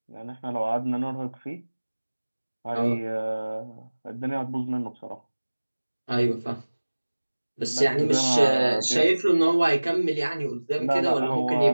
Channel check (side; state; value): both; inverted; correlation -1.00